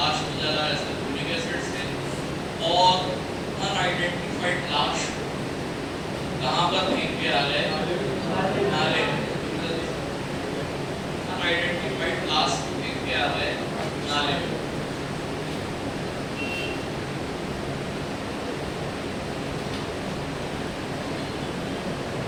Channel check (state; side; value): identical; both; correlation 1.00